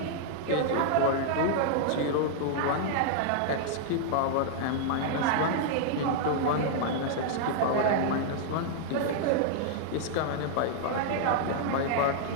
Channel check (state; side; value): different; both; correlation -0.01